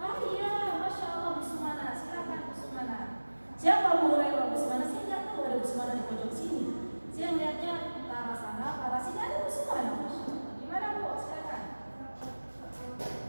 Oh iya, Masya Allah, Bu Sumana, silakan Bu Sumana. Siapa Abu Hurairah? Bu Sumana, saya nggak tahu ada Bu Sumana di pojok sini. Saya melihatnya ke arah sana, ke arah sini ada Bu Sumana. Gimana Bu? Silakan.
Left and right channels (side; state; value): both; inverted; correlation -1.00